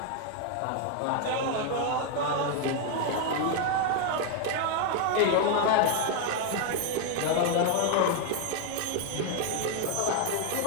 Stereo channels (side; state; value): both; different; correlation 0.00